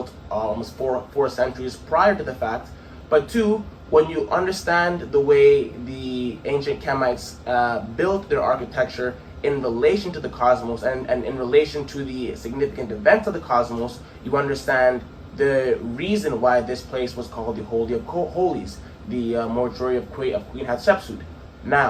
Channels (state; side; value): identical; both; correlation 1.00